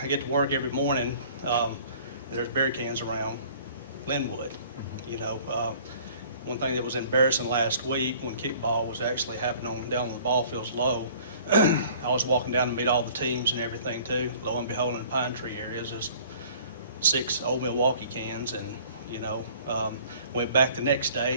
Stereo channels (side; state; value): both; inverted; correlation -0.51